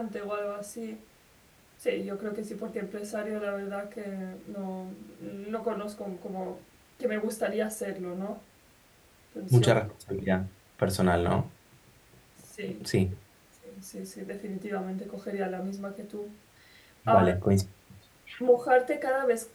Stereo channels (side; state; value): both; identical; correlation 1.00